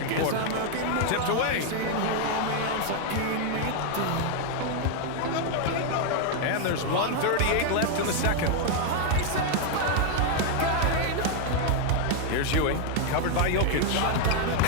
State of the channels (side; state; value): both; different; correlation 0.00